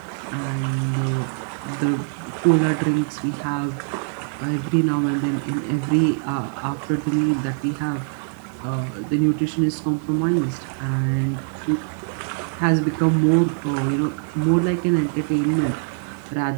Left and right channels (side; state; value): left; silent; digital silence